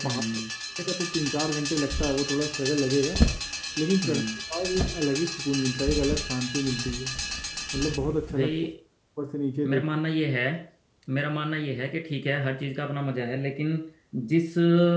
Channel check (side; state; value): both; identical; correlation 1.00